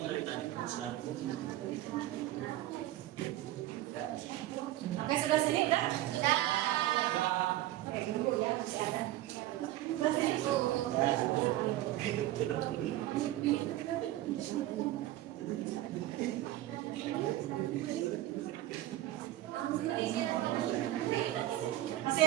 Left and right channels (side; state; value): left; quieter; 15.3 dB